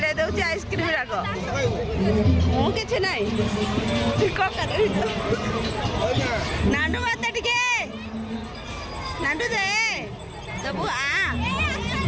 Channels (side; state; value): both; identical; correlation 1.00